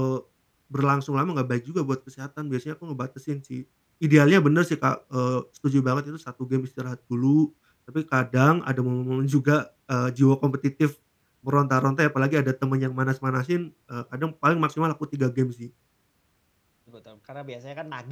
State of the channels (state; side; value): identical; both; correlation 1.00